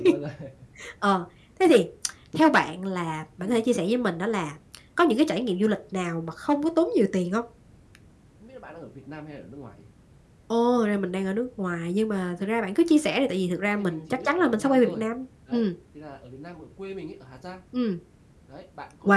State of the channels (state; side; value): identical; both; correlation 1.00